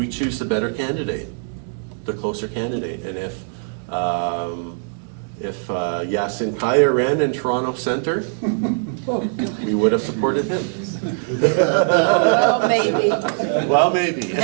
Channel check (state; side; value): silent; left; digital silence